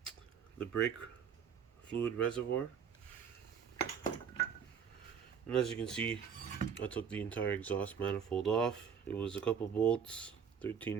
brake fluid reservoir. And as you can see, I took the entire exhaust manifold off. It was a couple bolts,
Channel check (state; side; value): quieter; left; 7.3 dB